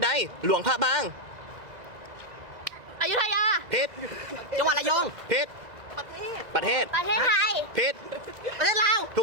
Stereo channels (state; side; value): late; left; 2.0 ms